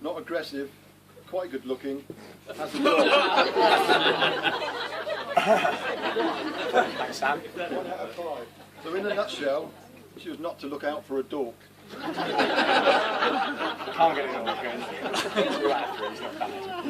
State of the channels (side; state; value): both; identical; correlation 1.00